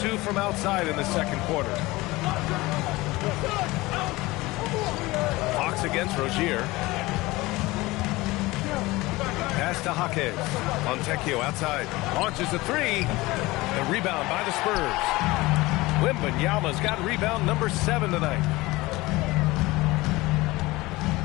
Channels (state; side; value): quieter; right; 20.7 dB